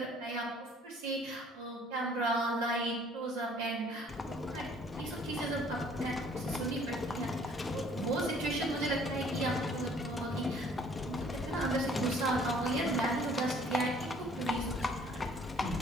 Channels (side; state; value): both; normal; correlation 0.57